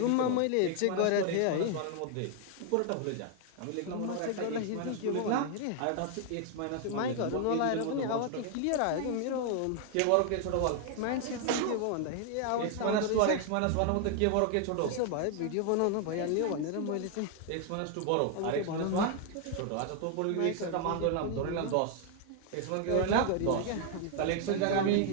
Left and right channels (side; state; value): both; different; correlation 0.00